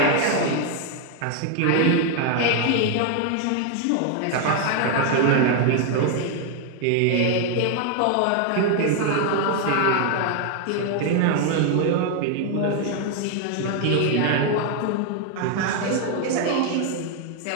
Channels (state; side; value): different; both; correlation 0.00